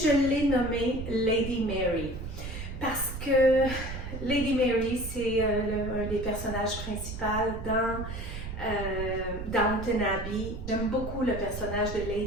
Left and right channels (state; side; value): noise; right; rumble, 8 dB below the sound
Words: l'ai nommé Lady Mary parce que Lady Mary, c'est un des personnages principaux dans Downton Abbey. J'aime beaucoup le personnage de